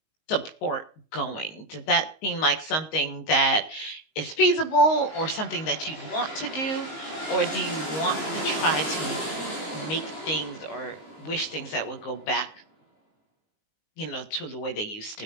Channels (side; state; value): right; late; 19 ms